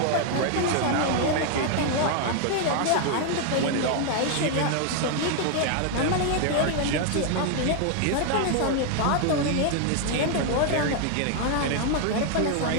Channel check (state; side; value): different; both; correlation 0.00